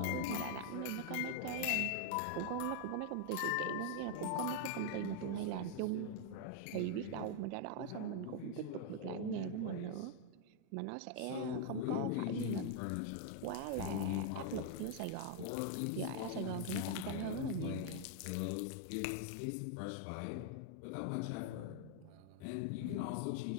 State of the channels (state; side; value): different; both; correlation 0.00